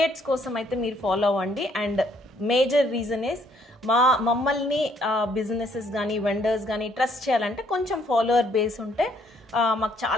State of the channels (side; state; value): both; normal; correlation 0.66